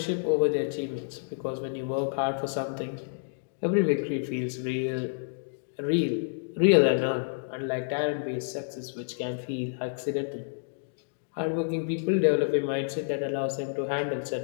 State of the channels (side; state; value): right; silent; digital silence